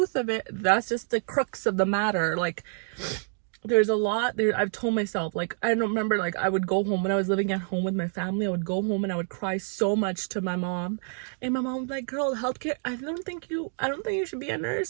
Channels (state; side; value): silent; left; 60 dB below the other